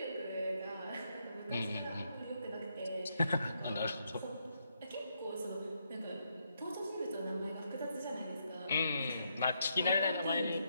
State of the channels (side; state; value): both; inverted; correlation -0.78